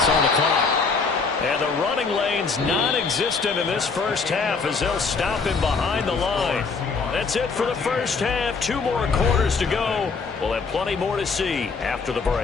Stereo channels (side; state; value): right; quieter; 4.8 dB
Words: on the clock. And the running lane's non-existent in this first half as they'll stop him behind the line. That's it for the first half. 2 more quarters to go. We'll have plenty more to see after the